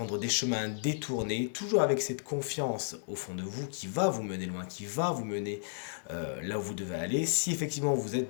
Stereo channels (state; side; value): silent; right; digital silence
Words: des chemins détournés, toujours avec cette confiance au fond de vous qui va vous mener loin, qui va vous mener là où vous devez aller. Si effectivement vous